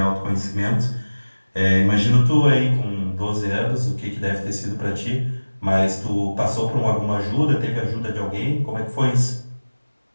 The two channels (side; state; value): both; inverted; correlation -1.00